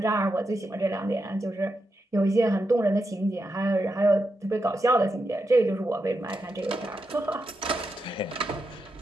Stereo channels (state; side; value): normal; both; correlation 0.86